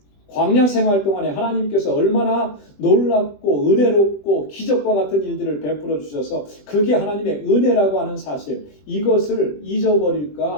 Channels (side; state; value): right; late; 20 ms